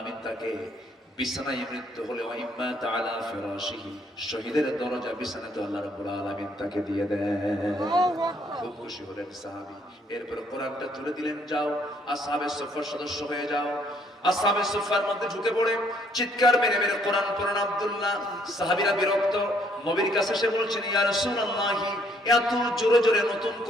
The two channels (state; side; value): normal; both; correlation 0.67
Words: তাকে বিছানায় মৃত্যু হলে, ওয়া ইম্মা তাআলা ফিরাশিহি, শহীদের দরজা বিছানাতে আল্লাহ রাব্বুল আলামিন তাকে দিয়ে দেন। খুব খুশি হলেন সাহাবী। এরপর কোরআনটা তুলে দিলেন, যাও আসহাবে সুফার সদস্য হয়ে যাও। আসহাবে সুফার মধ্যে ঢুকে পড়ে চিৎকার মেরে মেরে কোরআন পড়েন আব্দুল্লাহ। সাহাবীরা বিরক্ত, নবীর কাছে এসে বলছেন, ইয়া রাসূলুল্লাহ, এত জোরে জোরে নতুন